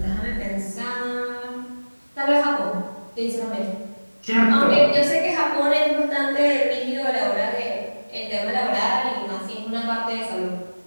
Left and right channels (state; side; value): inverted; both; correlation -1.00